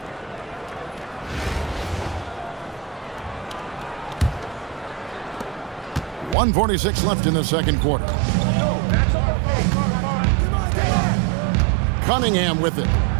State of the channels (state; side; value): drops out; left; at 6.4 s